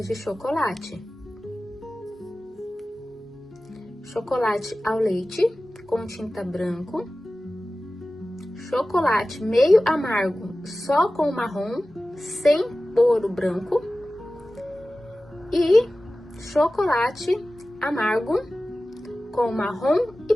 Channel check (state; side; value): normal; both; correlation 0.96